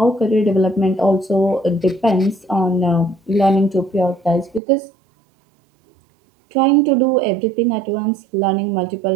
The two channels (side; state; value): left; drops out; at 4.6 s